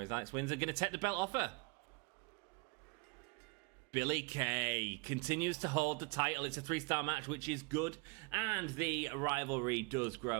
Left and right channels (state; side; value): quieter; left; 30.2 dB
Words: is Alex Windsor going to take the belt off her? Billie Kay continues to hold the title. It's a 3-star match, which is good. And the rivalry does